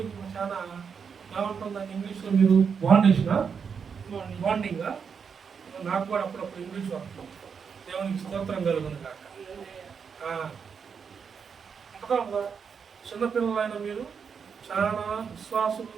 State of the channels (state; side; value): quieter; left; 6.4 dB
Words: చాలా ఏమంటుందని ఇంగ్లీష్లో మీరు బాండింగ్. నాకు కూడా అప్పుడప్పుడు ఇంగ్లీష్ వస్తాం. దేవునికి స్తోత్రం కలుగును కాక. చిన్నపిల్లలైన మీరు చాలా విశ్వాసులు,